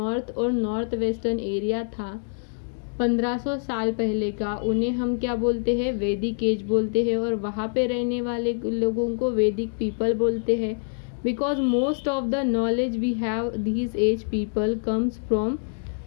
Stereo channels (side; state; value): right; silent; digital silence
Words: और नॉर्थ वेस्टर्न एरिया था 1500 साल पहले का, उन्हें हम क्या बोलते हैं? वैदिक एज बोलते हैं। और वहाँ पे रहने वाले लोगों को वैदिक पीपल बोलते हैं। Because most of the knowledge we have these age people comes from